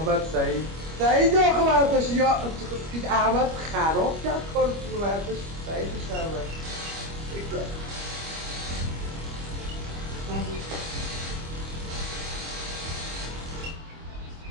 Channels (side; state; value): left; late; 25 ms